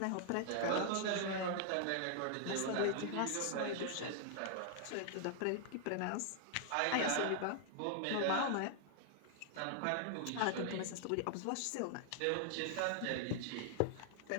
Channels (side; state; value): both; different; correlation 0.00